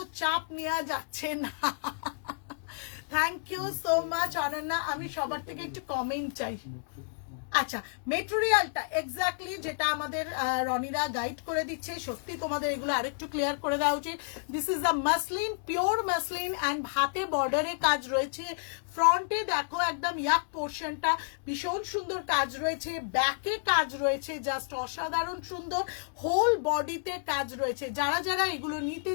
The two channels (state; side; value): silent; right; digital silence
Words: চাপ নেওয়া যাচ্ছে না। Thank you so much Ananya. আমি সবার থেকে একটু কমেন্ট চাই। আচ্ছা, মেটেরিয়ালটা এক্স্যাক্টলি যেটা আমাদের রনিরা গাইড করে দিচ্ছে, সত্যি তোমাদের এগুলো আরেকটু ক্লিয়ার করে দেওয়া উচিত। This is a muslin, pure muslin and হাতে বর্ডারে কাজ রয়েছে। ফ্রন্টে দেখো একদম ইয়াক পোর্শনটা ভীষণ সুন্দর কাজ রয়েছে, ব্যাকে কাজ রয়েছে জাস্ট অসাধারণ সুন্দর, হোল বডিতে কাজ রয়েছে। যারা এগুলো নিতে